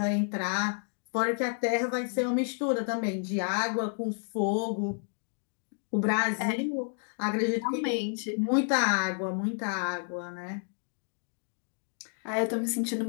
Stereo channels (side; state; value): right; silent; 57 dB below the other